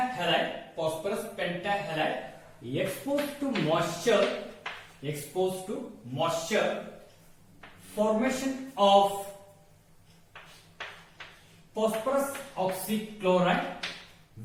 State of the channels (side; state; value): both; identical; correlation 1.00